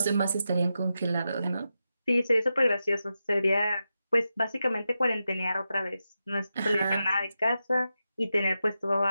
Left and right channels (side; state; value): both; inverted; correlation -0.89